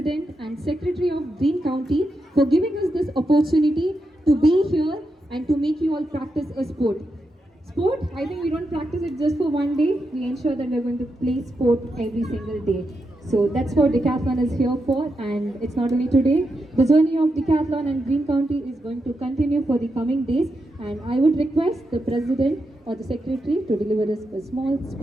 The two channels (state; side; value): normal; both; correlation 0.86